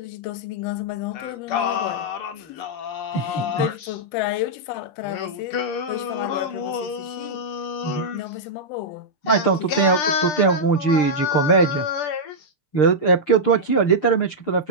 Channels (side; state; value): right; late; 6.7 ms